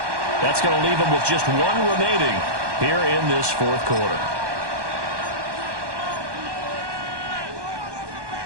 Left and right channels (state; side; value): late; left; 1.2 ms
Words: That's going to leave them with just 1 remaining here in this 4th quarter.